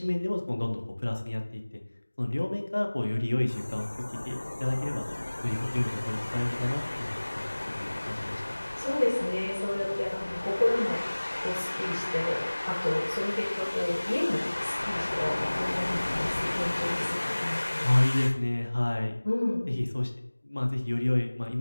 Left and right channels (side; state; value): both; inverted; correlation -1.00